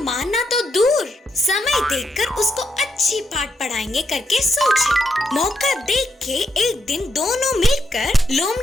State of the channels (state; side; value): normal; both; correlation 0.81